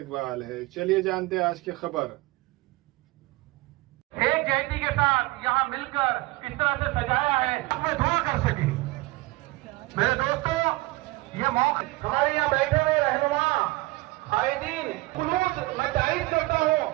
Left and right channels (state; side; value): quieter; left; 21.4 dB